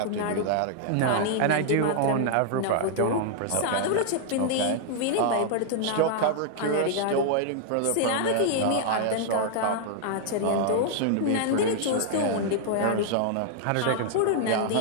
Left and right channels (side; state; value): both; different; correlation -0.01